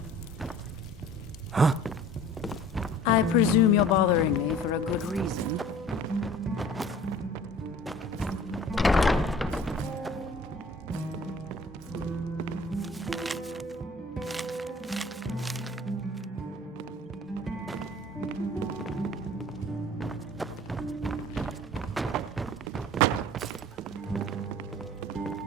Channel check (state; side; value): normal; both; correlation 0.47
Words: Huh? I presume you're bothering me for a good reason.